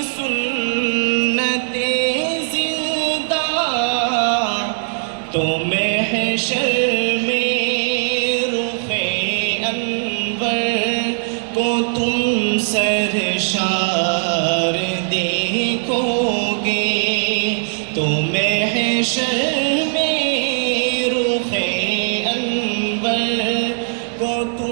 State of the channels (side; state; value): left; silent; digital silence